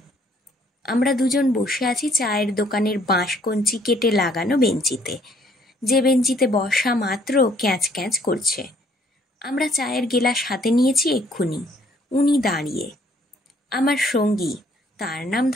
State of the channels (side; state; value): both; normal; correlation 0.63